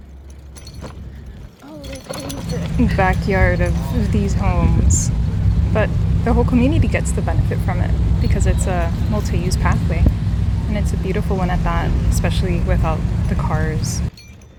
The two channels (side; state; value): both; identical; correlation 1.00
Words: Backyard of these homes, but the whole community gets the benefit from it because it's a multi-use pathway, and it's a beautiful one at that, especially without the cars.